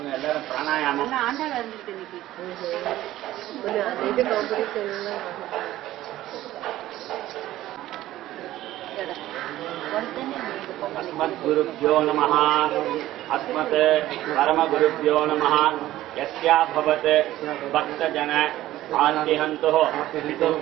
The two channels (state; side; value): quieter; left; 14.9 dB